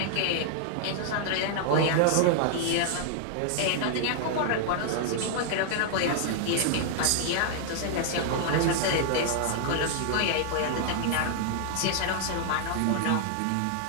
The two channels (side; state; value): both; different; correlation 0.00